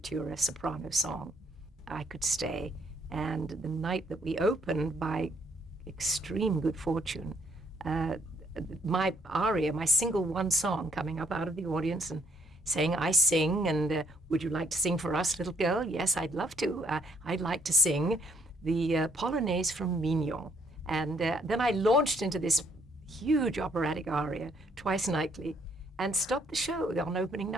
soprano song, I could stay. And the night that we opened, by extreme good fortune, my aria, my single one song, coming up out of the audience and saying, "I sing, and would you like to sing for us, little girl?" "Yes, I'd love to. I'd like to sing the Polonaise from Mignon." And then I launched into this huge operatic aria, Twice Nightly, and stopped the show on opening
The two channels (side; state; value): both; normal; correlation 0.68